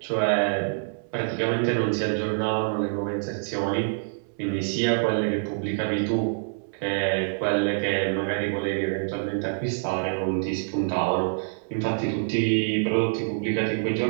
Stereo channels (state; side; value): silent; left; 61 dB below the other